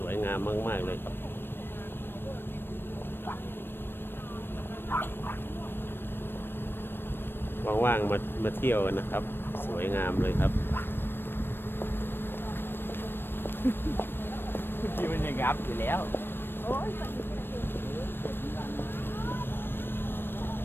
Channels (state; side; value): late; right; 0.10 ms